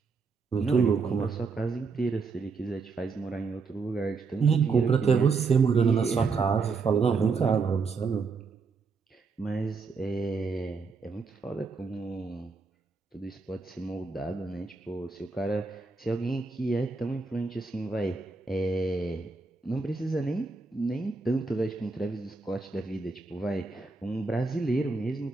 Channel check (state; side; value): quieter; left; 4.6 dB